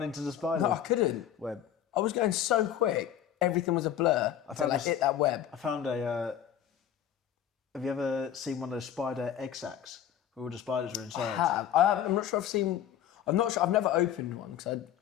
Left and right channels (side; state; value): right; quieter; 10.2 dB